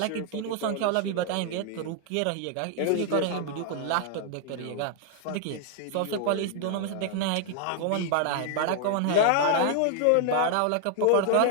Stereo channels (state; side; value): different; both; correlation 0.00